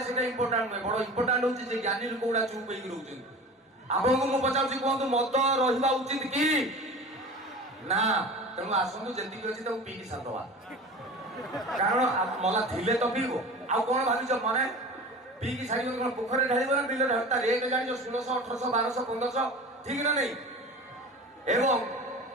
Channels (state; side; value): normal; both; correlation 0.36